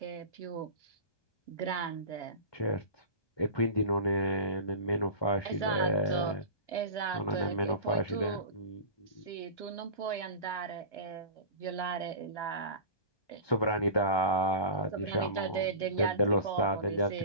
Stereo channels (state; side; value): late; right; 1.2 ms